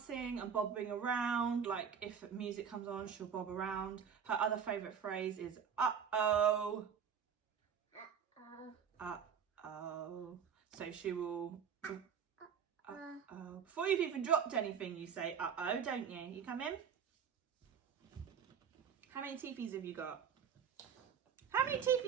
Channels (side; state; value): left; quieter; 7.4 dB